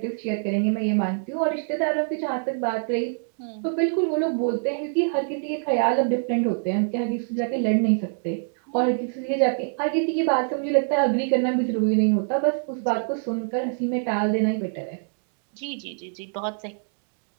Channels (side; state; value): left; silent; digital silence